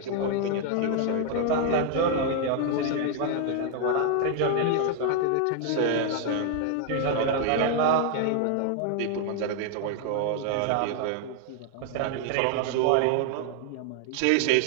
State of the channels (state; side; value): different; both; correlation 0.00